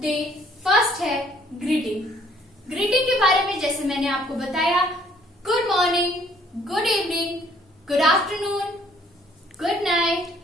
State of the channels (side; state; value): both; normal; correlation 0.61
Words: day first है ग्रीटिंग। ग्रीटिंग के बारे में जैसे मैंने आपको बताया, good morning, good evening, good afternoon, good night,